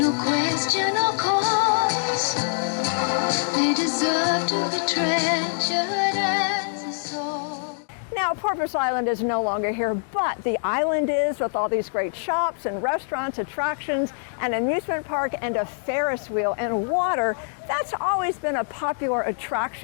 question or cause, they deserve to be treasured as a soul. Now, Porpoise Island is no longer here, but the island is, with all these great shops and restaurants, attractions, an amusement park, and a Ferris wheel and water. That's always been a popular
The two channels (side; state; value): right; silent; digital silence